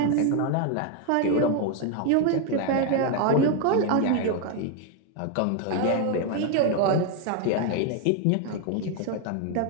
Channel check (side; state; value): both; different; correlation 0.01